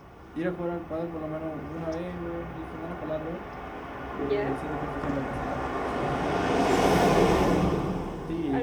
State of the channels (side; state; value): both; identical; correlation 1.00